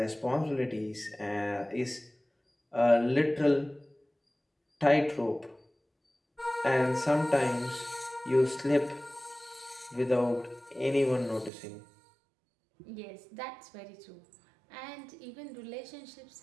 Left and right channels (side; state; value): left; drops out; at 11.5 s